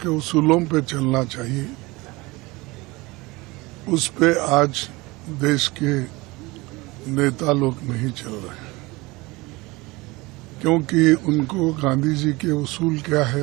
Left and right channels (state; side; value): quieter; left; 22.8 dB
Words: उसूलों पे चलना चाहिए, उस पे आज देश के नेता लोग नहीं चल रहे हैं, क्योंकि उनको गांधी जी के उसूल क्या है